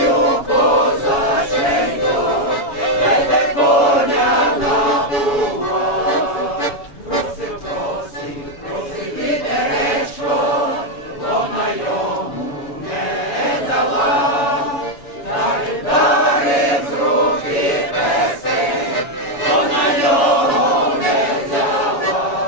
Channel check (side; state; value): right; late; 7.2 ms